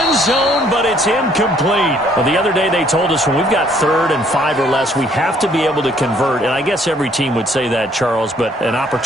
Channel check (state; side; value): normal; both; correlation 0.63